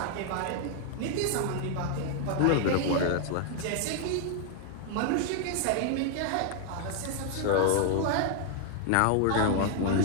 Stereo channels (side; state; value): both; different; correlation 0.00